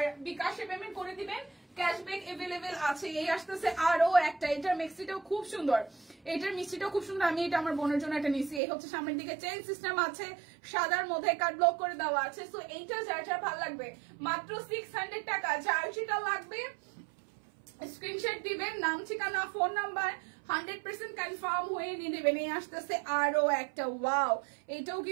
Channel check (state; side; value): drops out; left; at 8.6 s